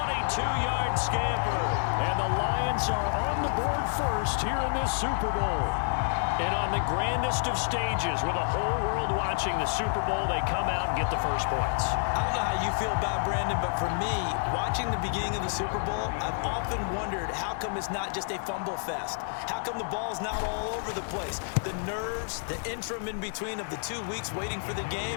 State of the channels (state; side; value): silent; right; 59 dB below the other